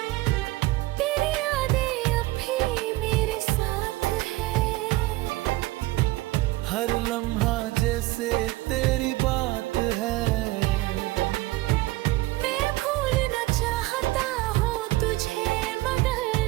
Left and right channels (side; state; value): left; quieter; 19.4 dB